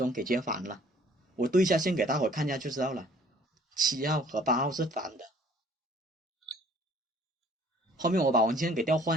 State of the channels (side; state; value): both; normal; correlation 0.56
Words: 给接反了。我对一下线给大伙看一下就知道了，7号和8号是反的。后面我把网线给调